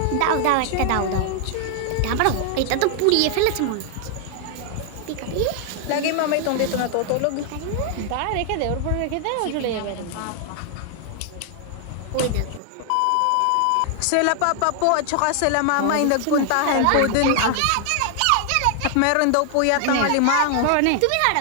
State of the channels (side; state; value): both; different; correlation 0.00